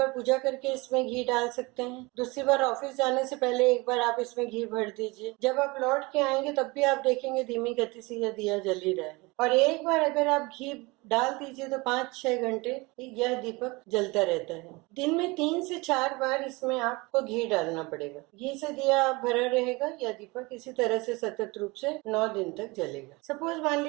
पूजा करके इसमें घी डाल सकते हैं। दूसरी बार ऑफिस जाने से पहले एक बार आप इसमें घी भर दीजिए। जब आप लौट के आएंगे तब भी आप देखेंगे धीमी गति से यह दिया जल ही रहा है। और एक बार अगर आप घी डाल दीजिए तो 5-6 घंटे यह दीपक जलता रहता है। दिन में 3 से 4 बार इसमें आपको घी डालना पड़ेगा। घी से दिया भरा रहेगा, यह दीपक इसी तरह से सतत रूप से 9 दिन तक जलेगा। सपोज मान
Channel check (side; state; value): left; quieter; 24.7 dB